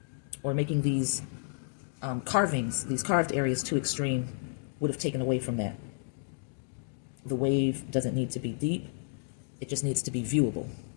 or making these carvings, these carved areas too extreme, would have taken away from that. The wave doesn't need to be deep. It just needs to be viewable.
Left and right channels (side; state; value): right; silent; digital silence